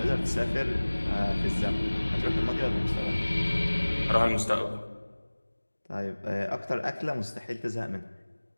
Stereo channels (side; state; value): both; inverted; correlation -1.00